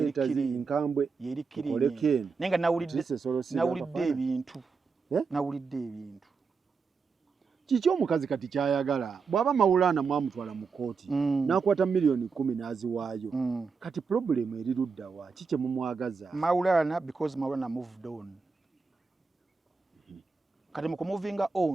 enkambwe yeri clean naye nga nawulidde ebintu kiki omukazi kati kyayagala bw'aba Maulana mwamutwala mu kooti n'akwata milioni 10 n'aziwaayo kati problemu eri luddawa kiki mumwagaza Maulana because Maulana moved on kati mu kumuvinga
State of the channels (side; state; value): left; quieter; 5.0 dB